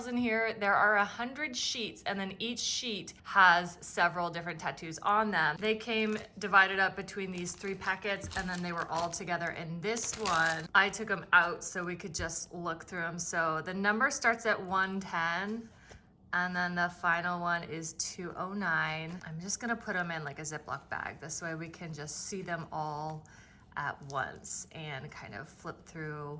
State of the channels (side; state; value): both; identical; correlation 1.00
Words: in here. There are 100 sheets, and then each sheet has several different tattoos on them. They came divided up between these 3 packets, and then they were all together in this one. I took them out so we could just look through them. So the number starts at 110. And then the final one is 209. I'm just gonna put them in like a Ziploc bag. This way we can just see them all at once and kind of flip